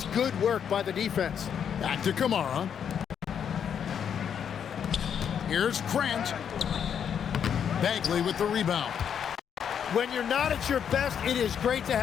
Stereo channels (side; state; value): right; quieter; 8.1 dB